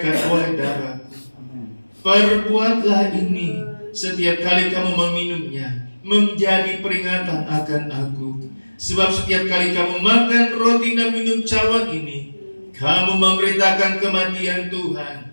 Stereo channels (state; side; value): inverted; both; correlation -1.00